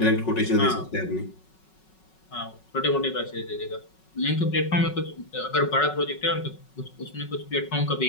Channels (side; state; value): right; late; 5.4 ms